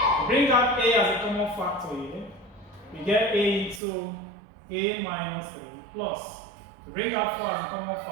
Bring out a as a common factor here. We get a into a minus 3 plus. We bring out 4 as a common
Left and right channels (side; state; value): left; drops out; at 3.8 s